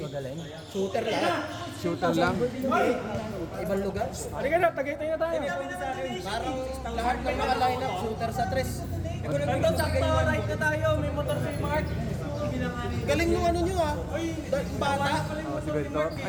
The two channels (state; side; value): identical; both; correlation 1.00